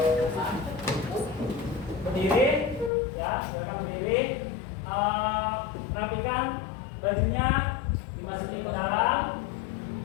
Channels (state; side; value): drops out; right; at 2.9 s